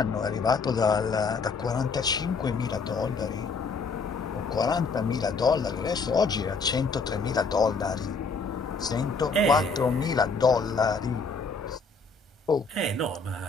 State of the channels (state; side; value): quieter; right; 4.4 dB